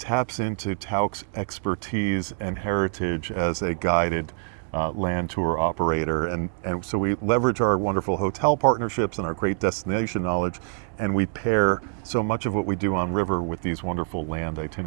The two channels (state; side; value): silent; left; digital silence